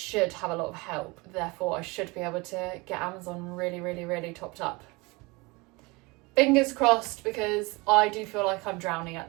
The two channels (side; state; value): left; quieter; 25.3 dB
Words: have a lot of help. Therefore, I should be able to get Amazon really, really, really topped up. Fingers crossed, because I do feel like I'm drowning at